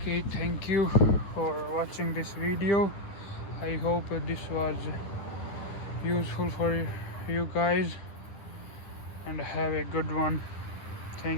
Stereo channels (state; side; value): late; right; 9.9 ms